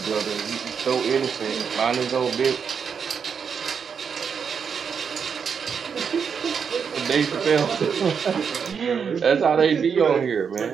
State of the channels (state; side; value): quieter; left; 6.6 dB